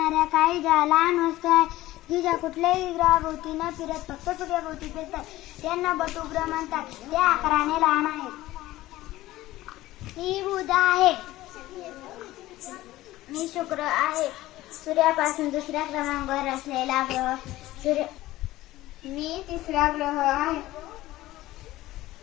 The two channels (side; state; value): right; quieter; 16.6 dB